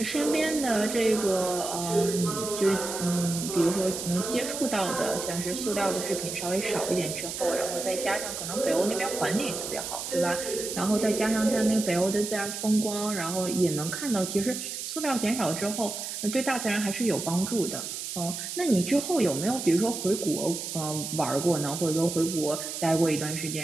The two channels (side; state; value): right; noise; hiss, 6 dB below the sound